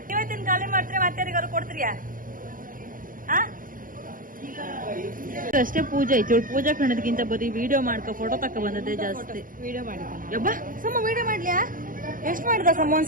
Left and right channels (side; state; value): left; late; 0.40 ms